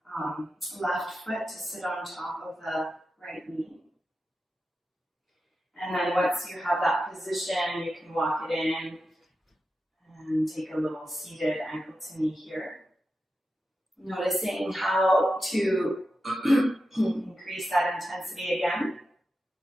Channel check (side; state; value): both; normal; correlation 0.90